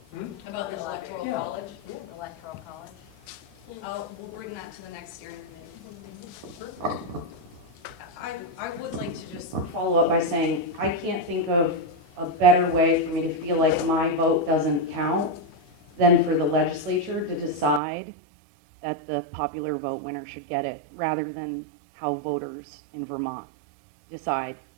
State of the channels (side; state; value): left; drops out; at 17.8 s